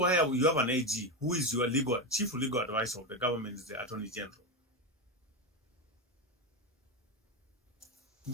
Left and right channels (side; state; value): both; normal; correlation 0.13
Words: you have an AG, who is your chief legal advisor of the government, is the Attorney General.